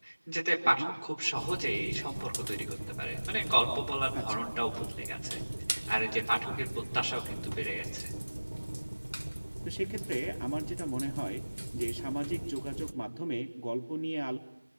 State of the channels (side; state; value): both; inverted; correlation -1.00